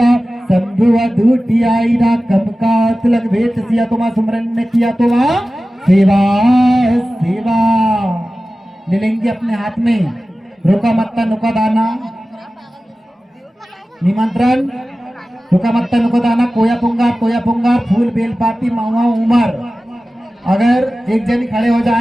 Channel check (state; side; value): normal; both; correlation 0.95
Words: शंभु अधूटियाईना। कम का तिलक भेंट सिया तो मां सुमरन ने किया तो मां सेवा सेवा ले लेंगे अपने हाथ में। रोका मत्ता नुका दाना निमंत्रण, रुका मत्ता नुका दाना, कोया पुंगार, फूल बेलपाती, महुआ उमर। अगर एक जन खड़े हो